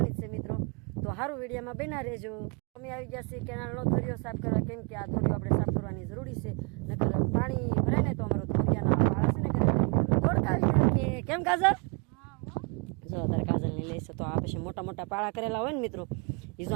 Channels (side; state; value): left; quieter; 34.0 dB